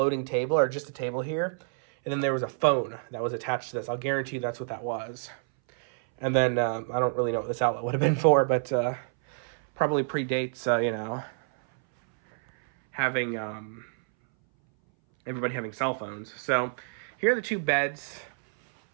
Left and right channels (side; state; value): left; silent; 59 dB below the other